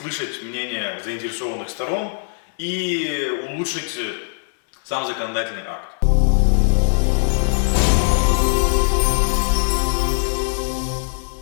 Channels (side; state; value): right; silent; 65 dB below the other